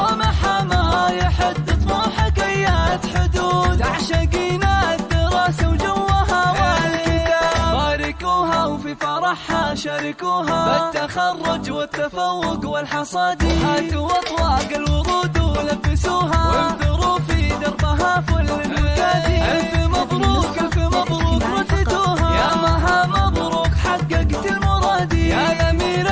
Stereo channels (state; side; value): identical; both; correlation 1.00